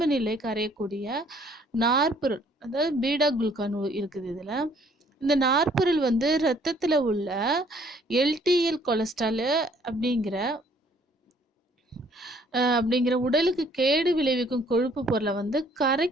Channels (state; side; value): normal; both; correlation 0.61